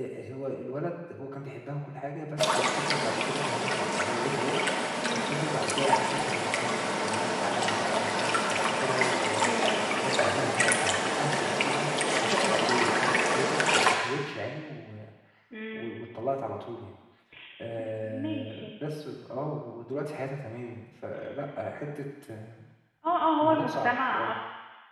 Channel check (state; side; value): identical; both; correlation 1.00